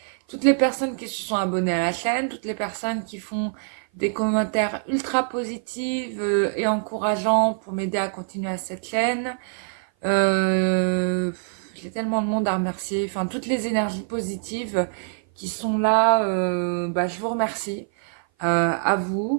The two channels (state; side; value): silent; left; 56 dB below the other